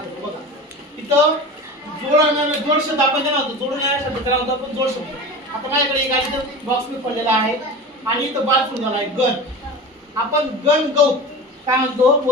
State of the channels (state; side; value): normal; both; correlation 0.32